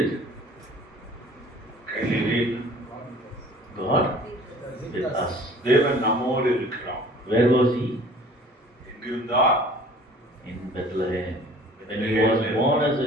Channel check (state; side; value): normal; both; correlation 0.49